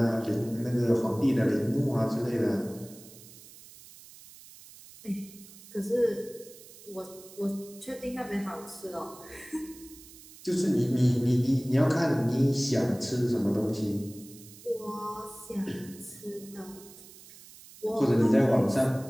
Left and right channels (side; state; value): right; noise; hiss, 20 dB below the sound